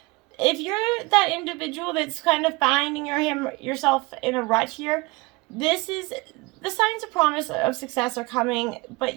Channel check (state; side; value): quieter; left; 24.1 dB